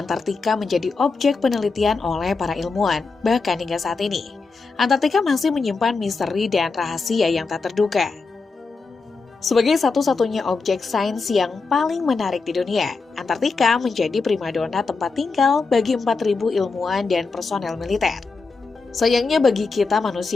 Antartika menjadi objek penelitian oleh para ilmuwan, bahkan hingga saat ini. Antartika masih menyimpan misteri dan rahasia yang tak terduga. Sebagai satu-satunya objek sains yang paling menarik di dunia, Antartika menjadi primadona tempat tinggal bagi 4.000 ilmuwan dan personel militer. Sayangnya bagi kita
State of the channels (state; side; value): quieter; right; 4.3 dB